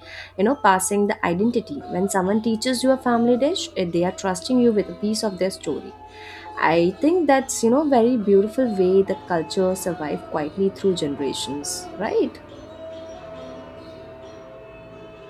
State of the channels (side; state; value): both; identical; correlation 1.00